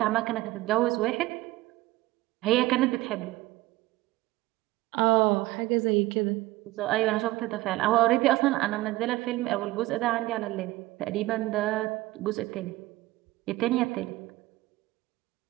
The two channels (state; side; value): quieter; left; 18.5 dB